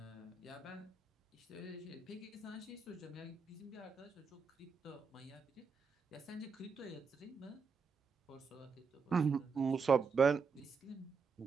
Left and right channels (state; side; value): quieter; left; 5.1 dB